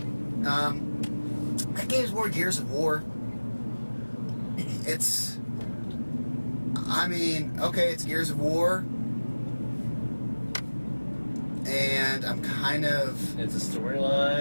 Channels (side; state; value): both; inverted; correlation -1.00